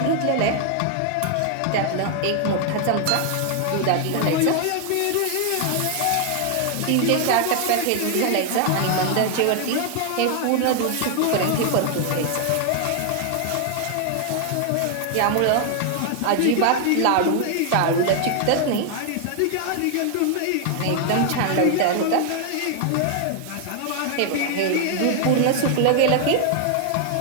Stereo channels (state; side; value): different; both; correlation 0.00